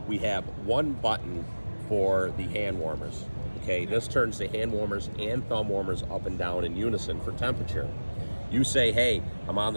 we have one button for the hand warmers. Okay, this turns the hand warmers and thumb warmers up and down in unison for temperature. You say, hey, I'm on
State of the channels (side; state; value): both; inverted; correlation -1.00